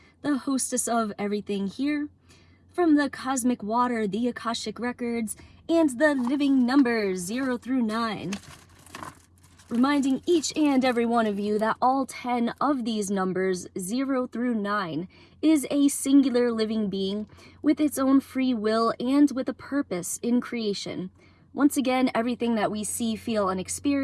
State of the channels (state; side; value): identical; both; correlation 1.00